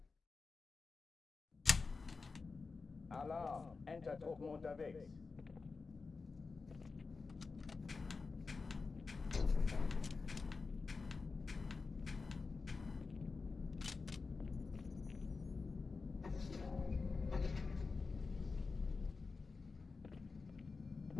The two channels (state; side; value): quieter; right; 4.3 dB